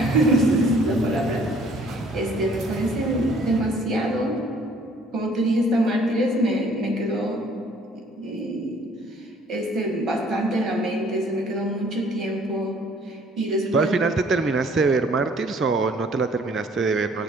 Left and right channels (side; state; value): both; normal; correlation 0.58